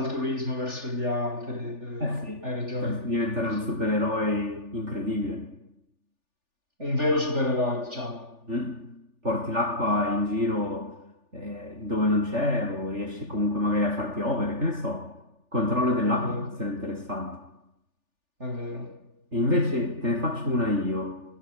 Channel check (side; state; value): left; late; 3.4 ms